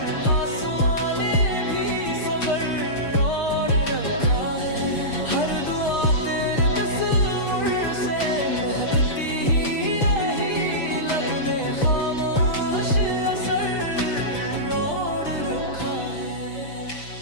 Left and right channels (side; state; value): right; late; 6.5 ms